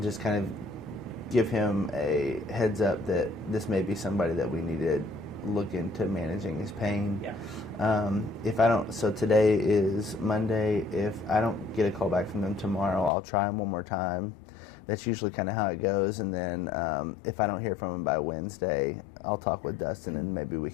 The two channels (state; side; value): drops out; right; at 13.1 s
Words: just kind of give him a heads up that this may be somebody that we need to look into managing his pain. Yeah. If I don't, so today is Monday. If I don't get a call back from them tomorrow, I'll try him one more time. That's usually kind of how it goes. And then if I don't hear from him by Wednesday, I'll talk with Dustin, and maybe we